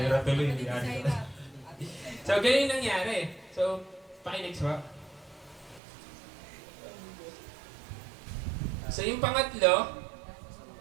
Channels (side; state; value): left; drops out; at 5.8 s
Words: tuloy, hindi So, ganyan yung nangyari. So, pakinext ba? So, yung pangatlo,